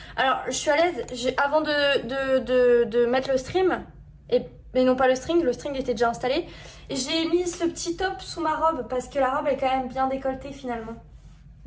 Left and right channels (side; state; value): both; identical; correlation 1.00